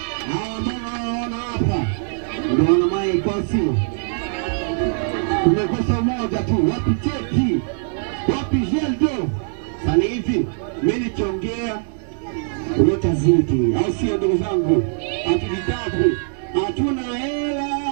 Mbona hapa? Ndio wana maiko sio. Tumekosa moja tu, wapi cheki? Wapi jeldo? Sasa hivi mimi nikiongea utazidi, au sio ndugu zangu? Hatujitabu, hatuna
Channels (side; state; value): left; silent; digital silence